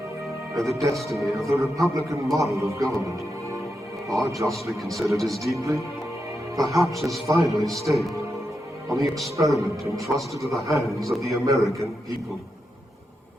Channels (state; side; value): normal; both; correlation 0.86